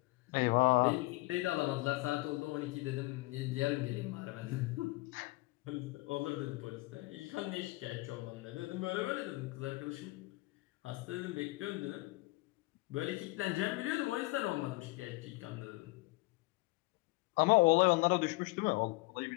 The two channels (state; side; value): quieter; right; 22.6 dB